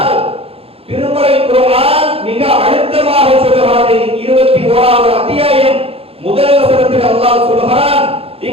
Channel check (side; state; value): left; late; 0.28 ms